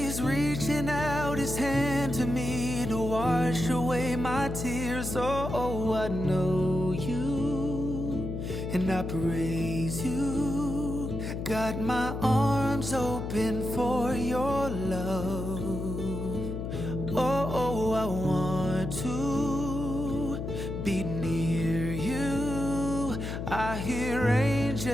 reaching out his hand to me to wash away my tears. Oh, I know you and I praise you. Got my arms open for your love. Oh, I want to be near you. I hear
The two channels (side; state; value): left; noise; hum, 5 dB below the sound